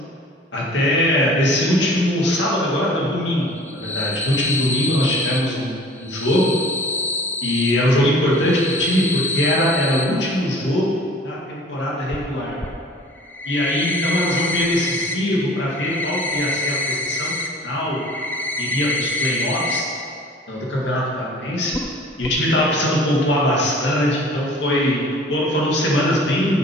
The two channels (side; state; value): both; normal; correlation 0.47